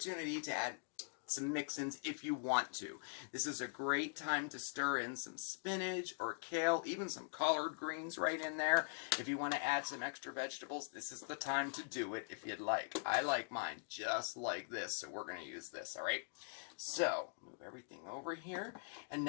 to add some mix-ins if you want to. This is a great time to stir in some spinach or kale, even some collard greens right in there. If you want to add some extra vegetables, this is the time to do it if you'd like. I like mine just like this, so we're going to use this, all right? So, move everything over here. And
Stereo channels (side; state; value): right; silent; digital silence